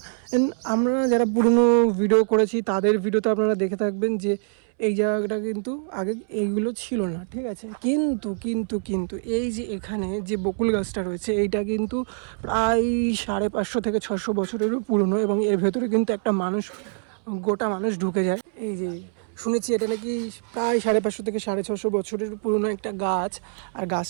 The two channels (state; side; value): silent; left; 62 dB below the other